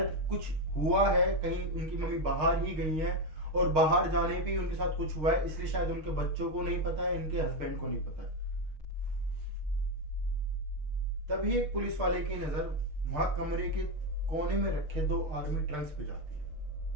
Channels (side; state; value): left; late; 6.5 ms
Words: कुछ हुआ है, कहीं उनकी मम्मी बाहर ही गई है और बाहर जाने पे उनके साथ कुछ हुआ है, इसलिए शायद उनके बच्चों को नहीं पता है, इनके हस्बैंड को नहीं पता है। तभी एक पुलिस वाले की नजर वहां कमरे के कोने में रखे 2 आर्मी ट्रंक्स पे जाती है।